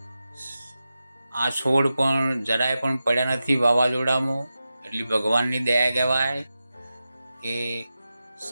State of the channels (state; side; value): inverted; both; correlation -0.92